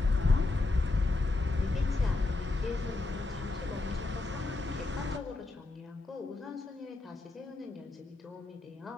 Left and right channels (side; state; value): right; quieter; 3.2 dB